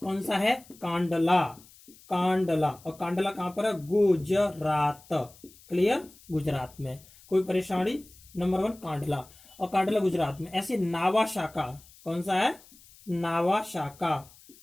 सा है? कांडला। और कांडला कहां पर है? गुजरात। क्लियर, गुजरात में। कोई परेशानी? नंबर 1 कांडला, और कांडला गुजरात में। ऐसे नावासाका, कौन सा है? नावासाका।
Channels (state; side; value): noise; left; hiss, 24 dB below the sound